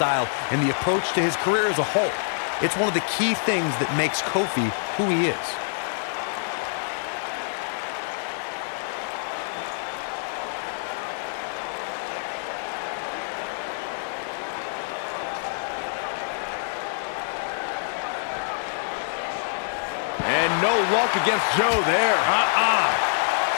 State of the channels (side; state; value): right; silent; digital silence